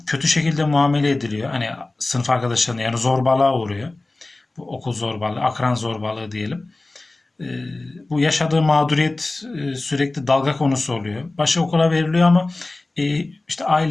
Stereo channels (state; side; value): quieter; right; 3.0 dB